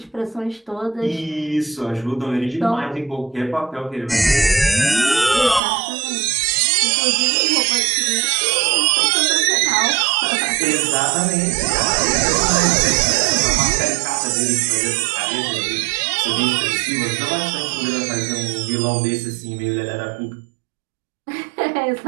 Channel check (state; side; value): drops out; left; at 5.6 s